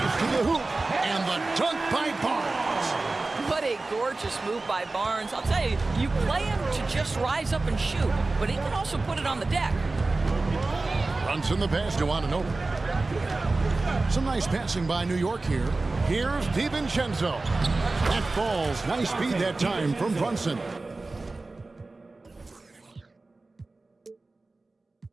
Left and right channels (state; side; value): quieter; left; 3.4 dB